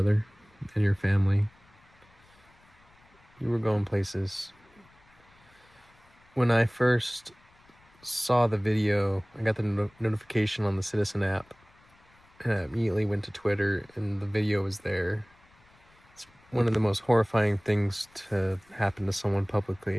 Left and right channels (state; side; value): noise; left; rumble, 30 dB below the sound